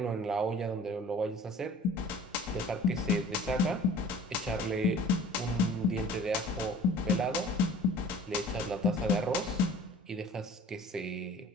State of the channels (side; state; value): both; normal; correlation 0.46